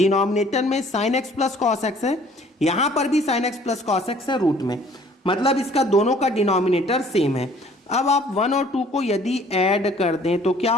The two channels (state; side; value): normal; both; correlation 0.56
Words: में sign X plus cos x है, यहाँ पर भी sign X plus cos x है रूट में, मतलब इसका दोनों का डिनोमिनेटर सेम है। अब आप 1 और 2 को यदि ऐड कर दें तो क्या